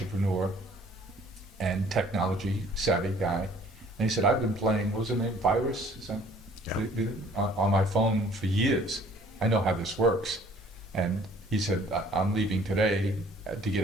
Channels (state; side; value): normal; both; correlation 0.56